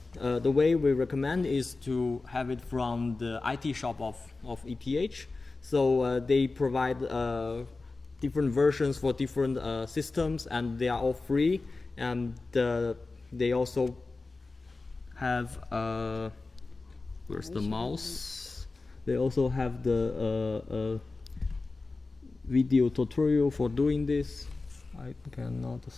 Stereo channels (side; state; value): right; quieter; 3.6 dB